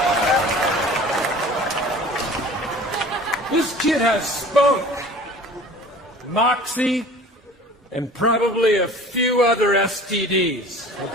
This kid has spunk, moxie, and probably a few other STDs,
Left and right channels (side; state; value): both; normal; correlation 0.44